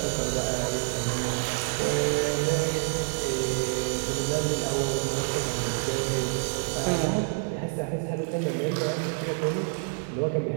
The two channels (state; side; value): silent; left; 59 dB below the other